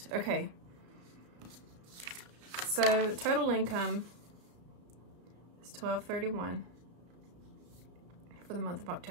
Okay. So total income is $1,231 for the month of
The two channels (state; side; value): late; left; 33 ms